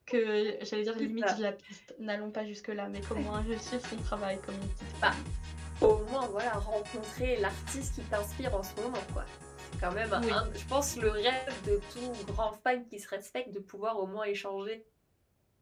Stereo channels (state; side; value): identical; both; correlation 1.00